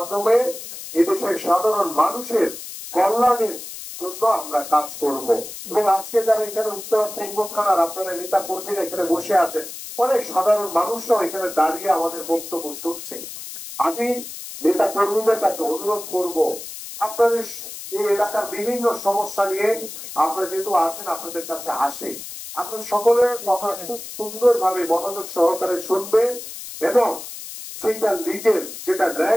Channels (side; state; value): left; noise; hiss, 11 dB below the sound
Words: এদেশের সাধারণ মানুষের কল্যাণের জন্য আমরা কাজ করব। এবং আজকে যারা এখানে উত্তর পূর্ব থানার আপনারা নেতা কর্মীরা এখানে বসে আছেন, অনেক সাধারণ মানুষরাও এখানে দাঁড়িয়ে আমাদের বক্তব্য শুনছে। আমি নেতা কর্মীদের কাছে অনুরোধ করব, আপনাদের এই এলাকার বিভিন্ন সমস্যা নিয়ে আপনারা যেহেতু আছেন, আপনাদের কাছে আসে, আপনার সকলের কথা খুব সুন্দরভাবে মনোযোগ সহকারে শুনবেন এবং সেটা লিগেল, যেটা